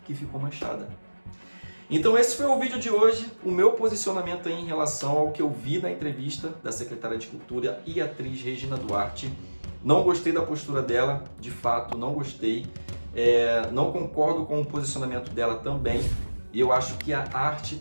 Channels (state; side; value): inverted; both; correlation -1.00